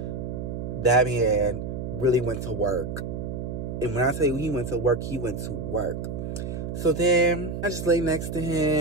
that man really went to work. And when I tell you he went to work, he went to work. So then I just lay next to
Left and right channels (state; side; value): noise; right; hum, 5 dB below the sound